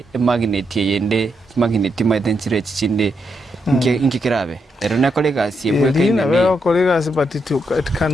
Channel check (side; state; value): both; normal; correlation 0.81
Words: magnet yende magnet maitenchire chichinde nkikirabe erona kolega siebwe kaine be kolega but it